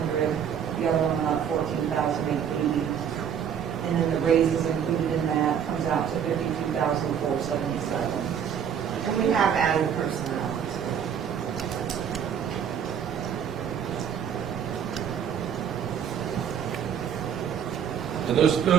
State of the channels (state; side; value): quieter; left; 8.3 dB